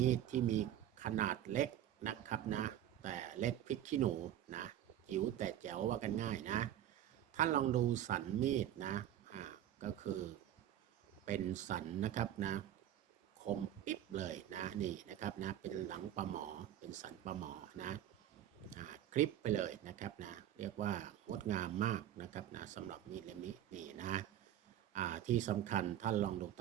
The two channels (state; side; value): quieter; left; 11.5 dB